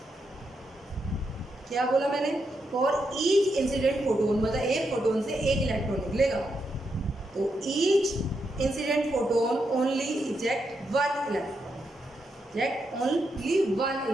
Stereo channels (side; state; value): both; normal; correlation 0.82